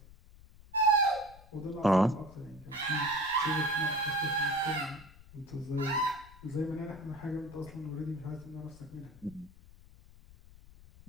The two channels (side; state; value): left; noise; rumble, 21 dB below the sound